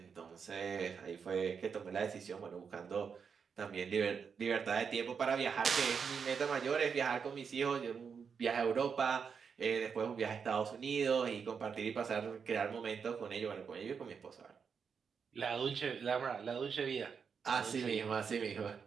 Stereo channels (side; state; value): left; quieter; 6.3 dB